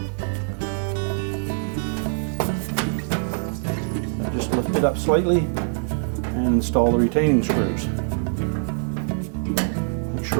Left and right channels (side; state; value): left; silent; 62 dB below the other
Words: Just lift it up slightly and install the retaining screws. Make